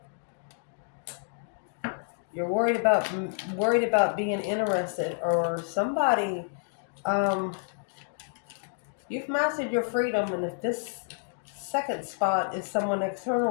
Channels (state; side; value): silent; right; digital silence